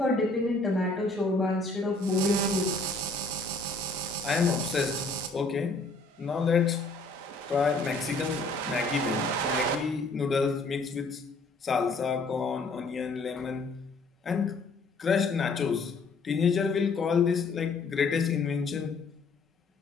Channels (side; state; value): right; quieter; 3.3 dB